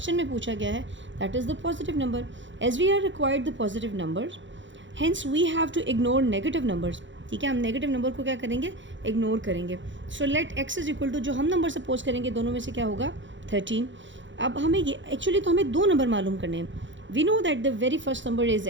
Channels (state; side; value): late; left; 0.54 ms